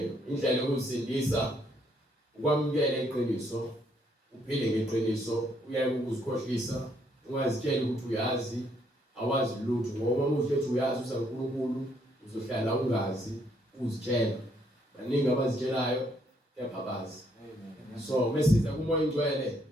indlela yokusindisa ukwamukela iqiniso uphile ngeqiniso uyaye ukuzikhohlisa ungazitshela ukuthi uyazi awazi lutho ngoba umuntu ethi uyazi usaNkulunkulu uzohlala ungazi uzitshela baningi abazitshelayo kepha abazi so mesiza kumoya ingcwele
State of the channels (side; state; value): both; normal; correlation 0.70